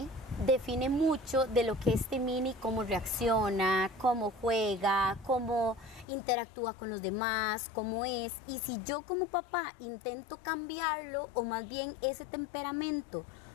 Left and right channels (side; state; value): right; drops out; at 6.1 s